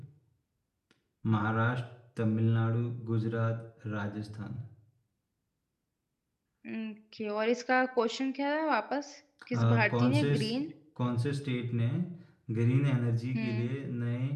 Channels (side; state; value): both; identical; correlation 1.00